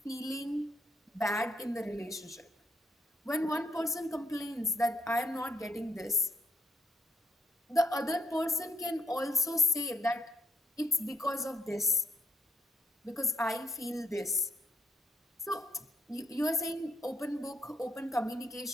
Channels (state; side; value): normal; both; correlation 0.73